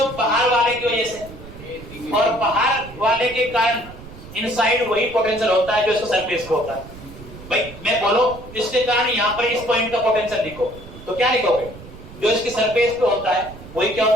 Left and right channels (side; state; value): right; noise; rumble, 16 dB below the sound